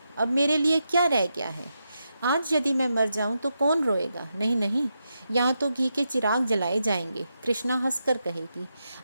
अब मेरे लिए क्या रह गया है? आज यदि मैं मर जाऊं तो कौन रोएगा? नहीं नहीं, यहाँ तो घी के चिराग जलाए जाएंगे। कृष्णा हंसकर कहेगी,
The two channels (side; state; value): both; inverted; correlation -0.85